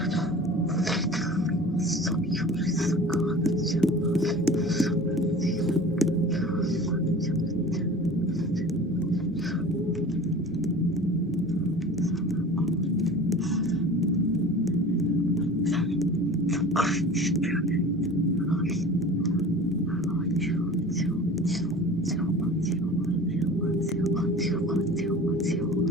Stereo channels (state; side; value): normal; both; correlation 0.39